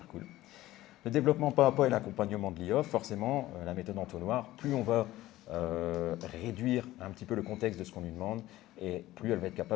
cool. Le développement pas à pas et l'accompagnement de l'IA, forcément, la méthode entonnoir, plus on va réduire un petit peu le contexte de ce qu'on lui demande, et plus elle va être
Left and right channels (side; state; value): right; quieter; 16.1 dB